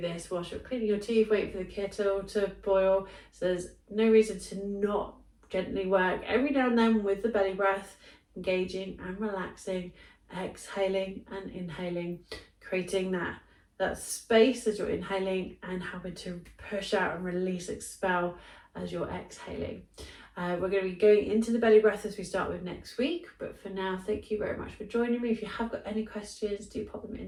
this whilst you're cleaning your teeth, waiting for the kettle to boil. So there's no reason to not gently work every now and then with the belly breath, engaging and relaxing, exhaling and inhaling, creating that space as you're inhaling and having to push out and release, expel as you're exhaling. We're going to be going into the belly breath as we start with next week, but for now, thank you very much for joining me. If you have got any questions, do pop them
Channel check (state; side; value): identical; both; correlation 1.00